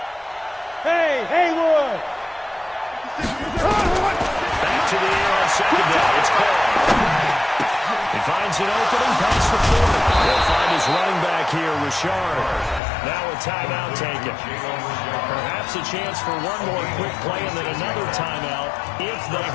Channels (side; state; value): right; drops out; at 12.8 s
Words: Hey, Haywood! Back to the air on 2nd down. It's called. He finds an opening past the 40. He'll find his running back here, Richard. Now a timeout taken. Perhaps a chance for one more quick play and then another timeout if they